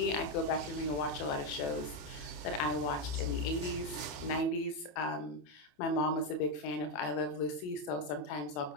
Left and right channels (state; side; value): late; right; 27 ms